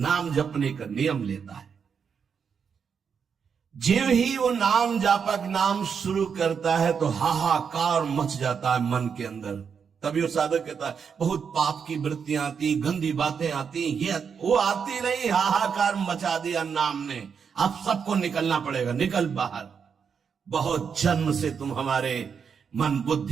जपने का नियम लेता है, ज्यों ही वो नाम जापक नाम शुरू करता है तो हाहाकार मच जाता है मन के अंदर। तभी वो साधक कहता है बहुत पाप की वृत्तियां आती, गंदी बातें आती, ये वो आती नहीं, हाहाकार मचा दिया नाम ने। अब सबको निकलना पड़ेगा, निकल बाहर। बहुत जन्म से तुम हमारे मन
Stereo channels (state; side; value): quieter; left; 6.6 dB